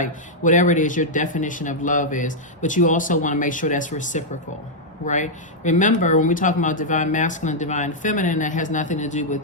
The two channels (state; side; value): normal; both; correlation -0.04